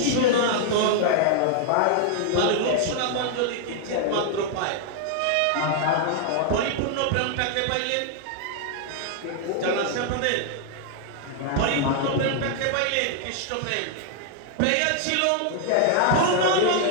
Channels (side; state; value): both; different; correlation 0.00